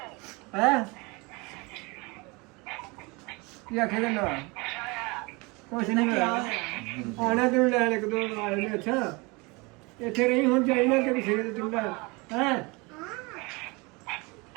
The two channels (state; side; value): quieter; left; 26.7 dB